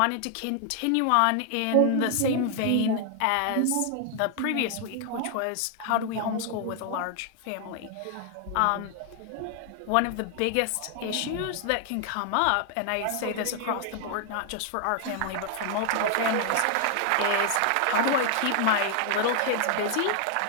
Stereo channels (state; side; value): different; both; correlation 0.00